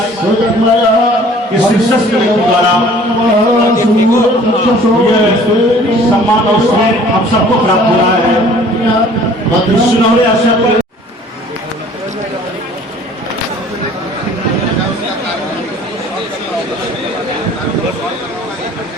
इस शिक्षक के द्वारा ये सम्मान और स्नेह हम सबको प्राप्त हो रहा है। सुनहरे अवसर पर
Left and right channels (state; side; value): normal; both; correlation 0.52